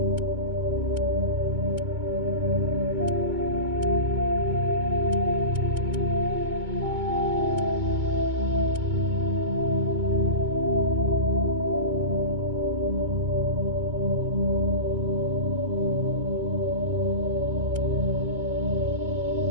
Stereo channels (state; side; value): late; left; 2.2 ms